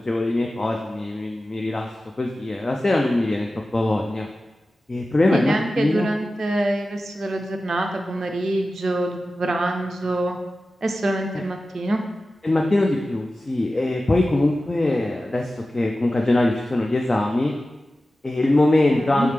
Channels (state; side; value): normal; both; correlation 0.94